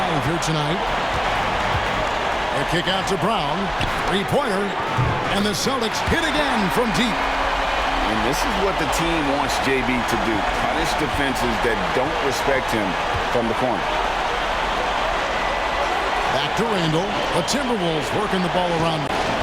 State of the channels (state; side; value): identical; both; correlation 1.00